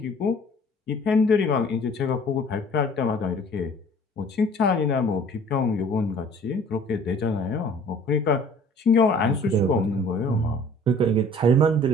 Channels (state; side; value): normal; both; correlation 0.51